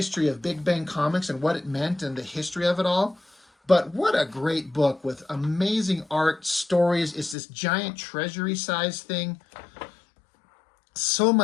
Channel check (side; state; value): right; drops out; at 7.4 s